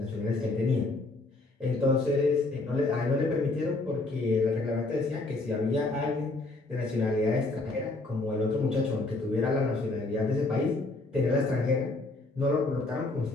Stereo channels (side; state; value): right; quieter; 3.1 dB